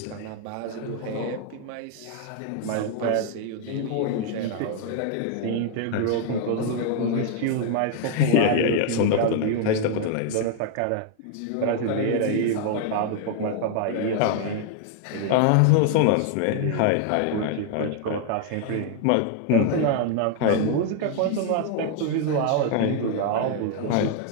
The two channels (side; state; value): both; different; correlation 0.00